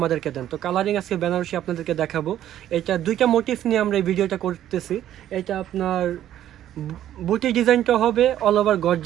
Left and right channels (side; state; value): left; quieter; 11.8 dB